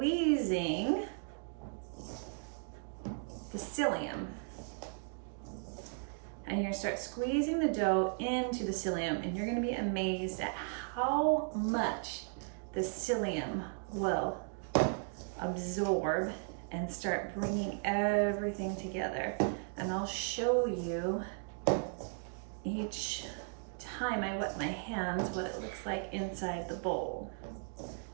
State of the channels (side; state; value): left; silent; 54 dB below the other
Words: the psyllium. And you're gonna start squeezing the dough into the psyllium, and you're gonna be amazed at how much the psyllium will absorb and start bringing everything together. And I'll show you each time I wet my hands what it looks like inside the bowl.